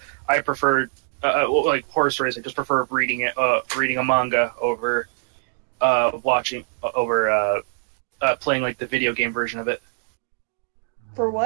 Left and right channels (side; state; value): left; silent; 63 dB below the other